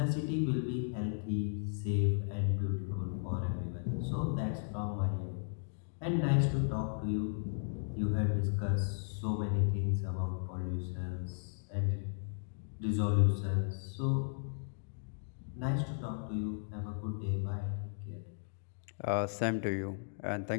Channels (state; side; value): silent; right; digital silence